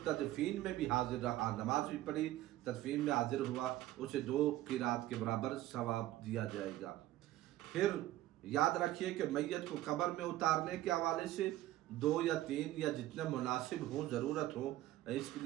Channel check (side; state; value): left; quieter; 15.3 dB